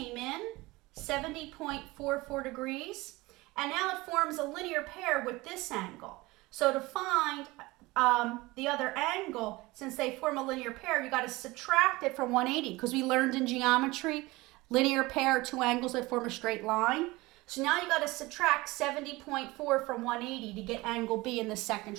in 70.44 degrees, and now it forms a linear pair with this angle. So to find the other angle, since they form a linear pair, you got to subtract it from 180 because we learned in geometry, linear pair, 2 angles that form a straight line. So now you got to subtract 70.4 from 180 to get angle B in the second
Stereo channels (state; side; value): quieter; left; 21.3 dB